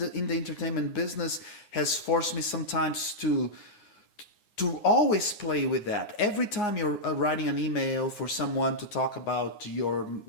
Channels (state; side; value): late; right; 9.6 ms